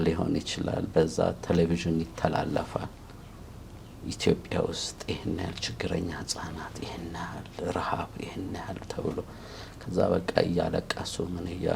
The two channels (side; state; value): both; identical; correlation 1.00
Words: ሊሆን ይችላል፣ በዛ ቴሌቪዥን ይተላለፋል። ኢትዮጵያ ውስጥ ይህን ያህል ችግረኛ ህጻናት፣ ይህን ያህል ረሃብ፣ ይህን ያህል ተብሎ ከዛ በቃ እያለቀሱ ምን